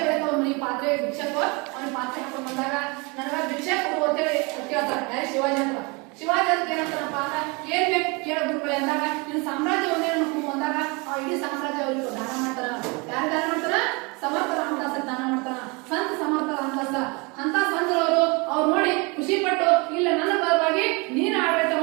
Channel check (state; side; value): quieter; left; 29.0 dB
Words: ಅವ್ನ ಪಾತ್ರೆ ಭಿಕ್ಷೆಕೋ ಅವ್ನ ಪಾತ್ರೆ ಹಾಕೊಂಡು ಬಂದಾಗ ನನಗ ಭಿಕ್ಷೆ ಕೊಡು ಅಂತೇಳಿ ಕೇಳ್ತಾರೆ. ಯಾರು? ಶಿವಾಜಿ ಅಂತ. ಶಿವಾಜಿ ಅಂತ ಏನಂತಾರಪ್ಪ ಅಂದ್ರ ಏನ್ ಬೇಕು ಕೇಳ ಗುರುಗಳೇ ಅಂದಾಗ ನಿನ್ನ ಸಾಮ್ರಾಜ್ಯ ಒಂದೇ ಅಂದಾಗ ಆ ಇಡೀ ಸಾಮ್ರಾಜ್ಯ ಅವ್ರಿಗೆ ದಾನ ಮಾಡ್ತಾರ. ಯಾರು ದಾನ ಮಾಡ್ತಾರ? ಸಮರ್ಥ ರಾಮದಾಸ ದಾನ ಮಾಡ್ತಾರ. ಸಂತ ಸಮರ್ಥ ರಾಮದಾಸ ಅಂತ ಸಂತರವರು ಅವ್ರು ನೋಡಿ ಖುಷಿ ಪಟ್ಟು ಇಲ್ಲ ನನ್ನ ಪರವಾಗಿ ನೀನು ಆಡಳಿತ